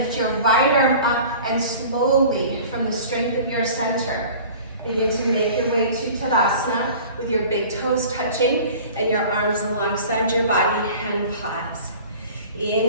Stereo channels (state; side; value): inverted; both; correlation -0.43